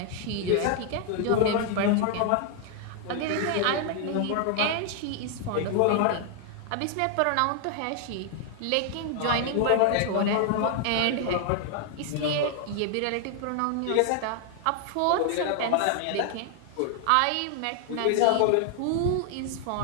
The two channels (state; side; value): different; both; correlation 0.00